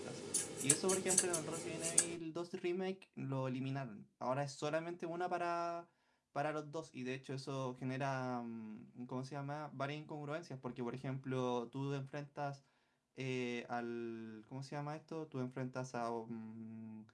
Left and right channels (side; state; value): both; identical; correlation 1.00